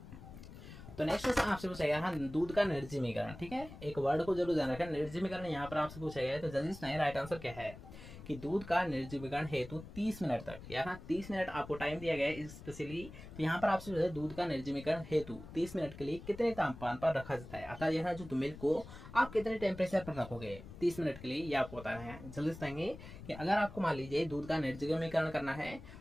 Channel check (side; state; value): left; noise; rumble, 14 dB below the sound